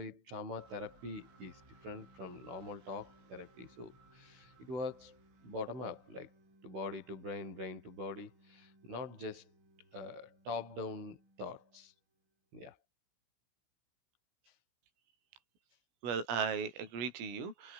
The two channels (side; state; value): left; late; 16 ms